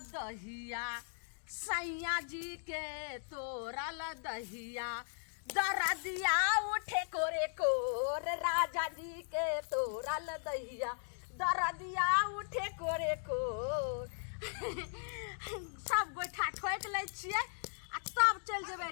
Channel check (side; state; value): right; silent; digital silence